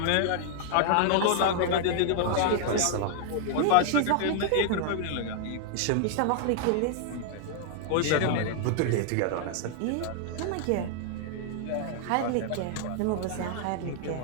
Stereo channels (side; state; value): both; different; correlation 0.00